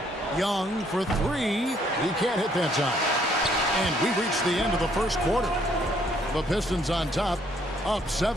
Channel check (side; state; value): both; normal; correlation 0.66